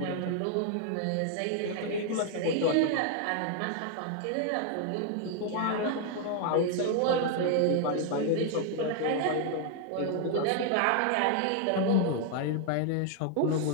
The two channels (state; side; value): different; both; correlation 0.00